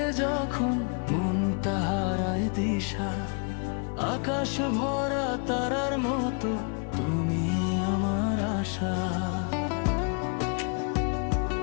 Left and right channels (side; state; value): right; quieter; 38.9 dB